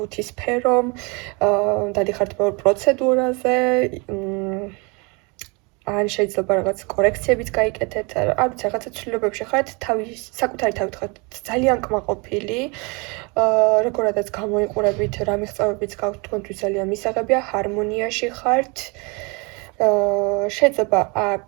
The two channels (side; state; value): left; quieter; 29.8 dB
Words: სფერომ, დადიხართ ბევრ პროცედურაზე, ან შეიძლება რაღაც კორექციებიც გაიკეთეთ, არ ვიცი, რაღაცა ცვლილებებში ხართ, საკუთარი თავით ხართ ძალიან კმაყოფილი, როგორადაც გამოიყურებით, რა მიღწევებიც გაქვთ თქვენთვის ძალიან მისაღებია, ჰარმონიაში ხართ. შეიძლება